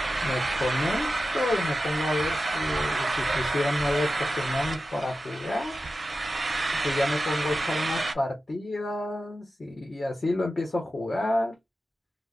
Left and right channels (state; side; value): normal; both; correlation 0.93